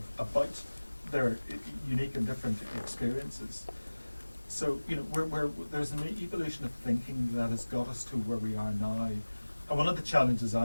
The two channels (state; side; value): inverted; both; correlation -1.00